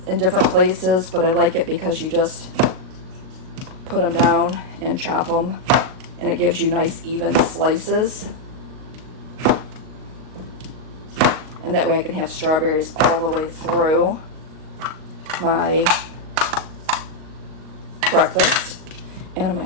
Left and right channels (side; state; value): left; late; 38 ms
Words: in different places, but I like it because you just put them down and chop them, and it gives you nice even slices. And that way I can have strawberries all the way through my breakfast. And I'm